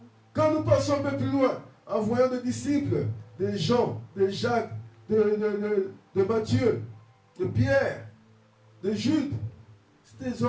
Quand nous passons un peu plus loin, en voyant des disciples, des Jean, de Jacques, de Matthieu, de Pierre, de Jude, c'était des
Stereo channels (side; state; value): both; identical; correlation 1.00